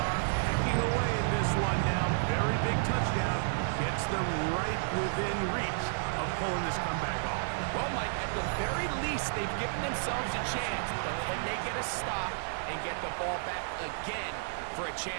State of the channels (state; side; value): silent; left; digital silence